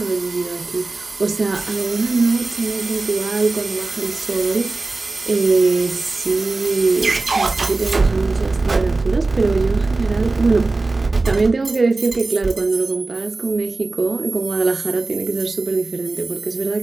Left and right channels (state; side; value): quieter; left; 3.4 dB